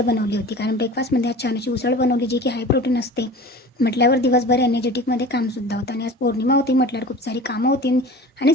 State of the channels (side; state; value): both; normal; correlation 0.38